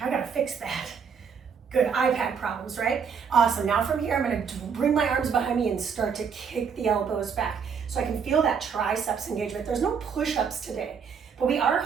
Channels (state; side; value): quieter; left; 6.5 dB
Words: fix that. Good, iPad problems, right? Awesome, now from here, I'm gonna bring my arms behind me and start to kick the elbows back so I can feel that triceps engagement. There's no push-ups today, but we are